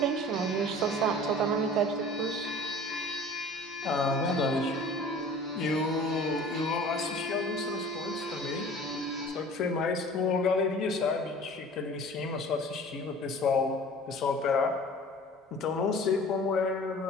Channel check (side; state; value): both; normal; correlation 0.44